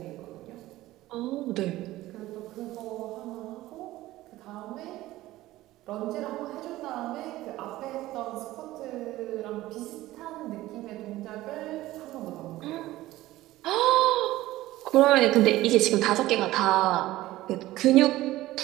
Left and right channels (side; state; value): left; quieter; 16.6 dB